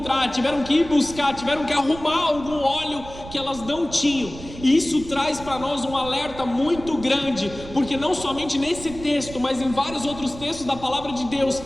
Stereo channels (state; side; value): noise; right; rumble, 14 dB below the sound